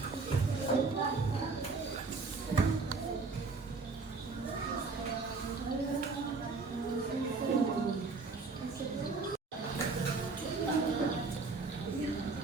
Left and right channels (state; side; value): quieter; left; 4.1 dB